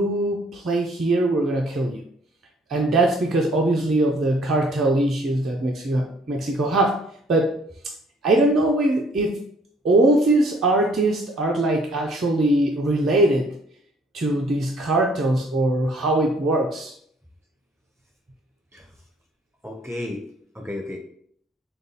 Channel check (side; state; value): both; normal; correlation 0.60